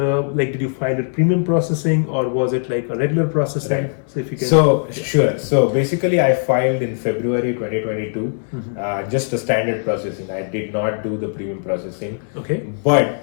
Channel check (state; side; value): silent; right; digital silence